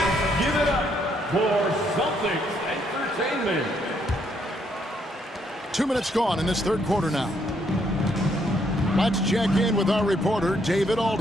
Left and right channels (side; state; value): both; normal; correlation 0.72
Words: Give it up for Celtics Entertainment. 2 minutes gone in this third quarter now. Let's check in with our reporter, David